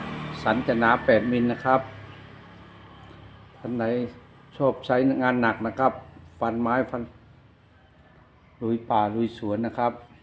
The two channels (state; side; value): identical; both; correlation 1.00